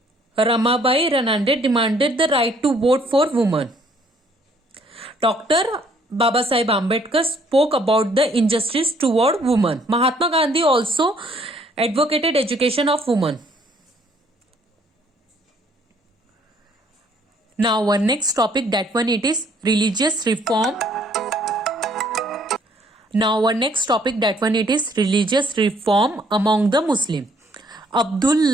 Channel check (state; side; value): normal; both; correlation 0.63